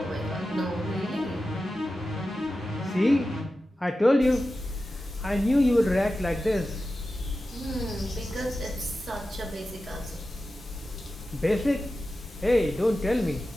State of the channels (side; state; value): both; normal; correlation 0.93